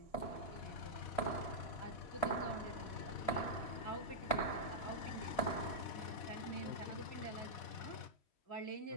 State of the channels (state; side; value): late; right; 3.1 ms